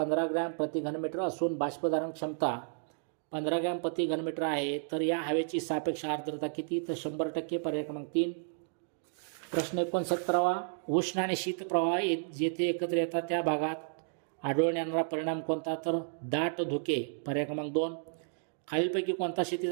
ग्रॅम प्रति घनमीटर असून बाष्पधारण क्षमता 15 ग्रॅम प्रति घनमीटर आहे. तर या हवेची सापेक्ष आर्द्रता किती? तर 100%, पर्याय क्रमांक 3. प्रश्न 69वा, उष्ण आणि शीत प्रवाह जेथे एकत्र येतात त्या भागात आढळून येणारा परिणाम कोणता? तर दाट धुके, पर्याय क्रमांक 2. खालीलपैकी कोणता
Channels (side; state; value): left; silent; digital silence